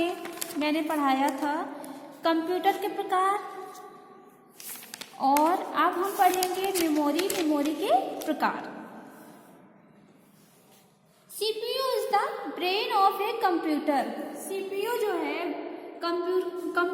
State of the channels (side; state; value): both; identical; correlation 1.00